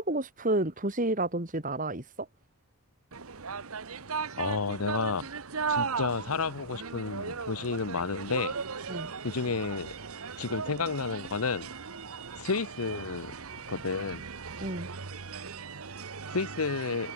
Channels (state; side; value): normal; both; correlation -0.14